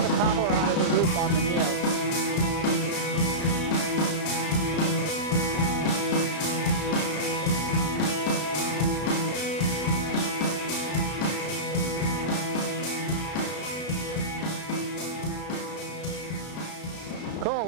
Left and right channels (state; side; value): late; right; 33 ms